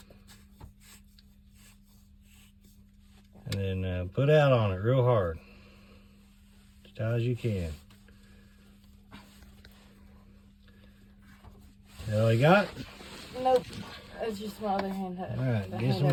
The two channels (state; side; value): identical; both; correlation 1.00